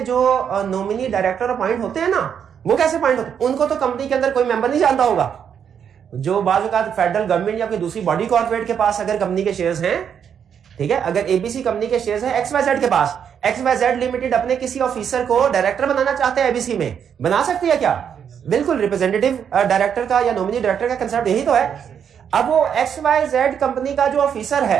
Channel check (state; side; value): quieter; left; 8.0 dB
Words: जो नॉमिनी डायरेक्टर अपॉइंट होते हैं ना, वो कैसे अपॉइंट होते हैं? उनको तो कंपनी के अंदर कोई मेंबर नहीं जानता होगा। जो बाजू का फेडरल गवर्नमेंट या कोई दूसरी बॉडी कॉर्पोरेट के पास अगर कंपनी के शेयर्स हैं, ठीक है, अगर एबीसी कंपनी के शेयर्स हैं XYZ के पास, XYZ लिमिटेड अपने किसी ऑफिसर को डायरेक्टर बनाना चाहते हैं एबीसी में, बना सकती है क्या? बिल्कुल। रिप्रेजेंटेटिव डायरेक्टर का या नॉमिनी डायरेक्टर का कंसेप्ट यही तो है। अब वो XYZ कंपनी का जो ऑफिसर